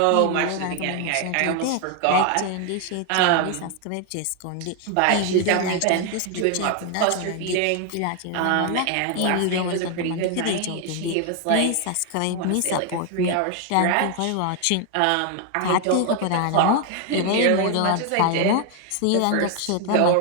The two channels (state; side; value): different; both; correlation 0.01